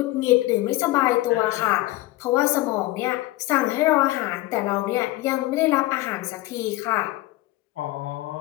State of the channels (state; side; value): quieter; right; 18.3 dB